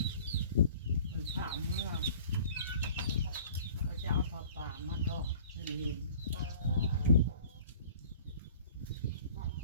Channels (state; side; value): inverted; both; correlation -0.48